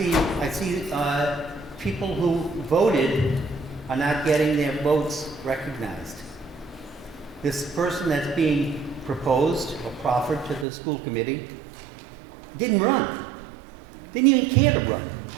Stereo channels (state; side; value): drops out; left; at 10.7 s